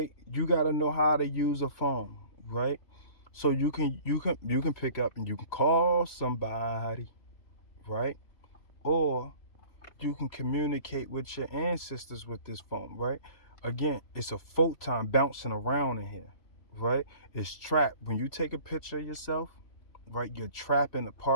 You got to know how to use a phone, right? So you can pick up and you can call somebody, right? or you can communicate with your ancestors with this phone, right? Again, it's a photon bouncing around in here, right? It's trapped. When you take a picture of yourself, right, you're trapping a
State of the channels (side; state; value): right; late; 3.0 ms